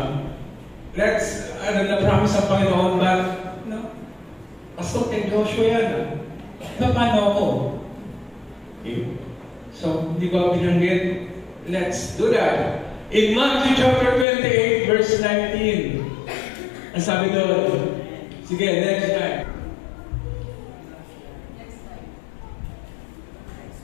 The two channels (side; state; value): right; drops out; at 14.2 s